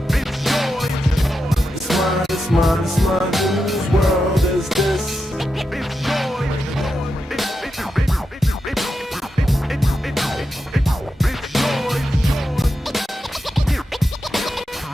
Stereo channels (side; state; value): both; normal; correlation 0.88